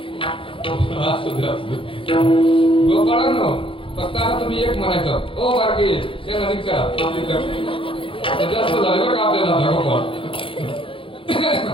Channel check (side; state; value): right; late; 0.25 ms